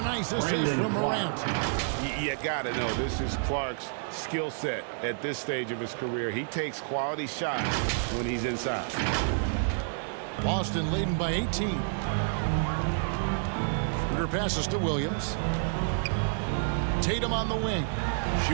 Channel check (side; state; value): left; silent; digital silence